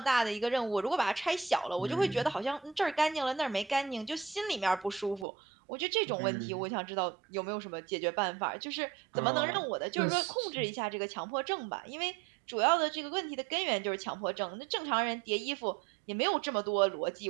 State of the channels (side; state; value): left; drops out; at 5.2 s